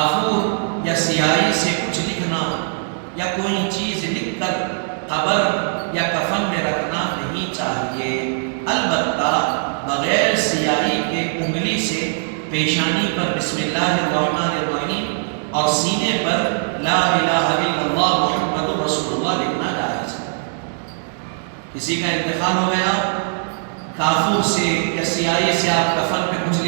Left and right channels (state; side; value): silent; left; digital silence